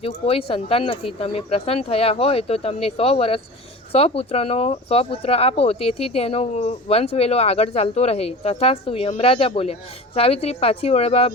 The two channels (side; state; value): both; normal; correlation 0.35